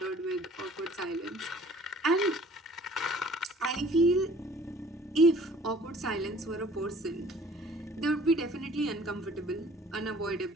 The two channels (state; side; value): normal; both; correlation 0.52